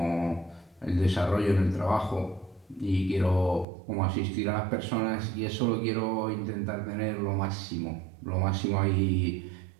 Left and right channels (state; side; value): drops out; left; at 3.7 s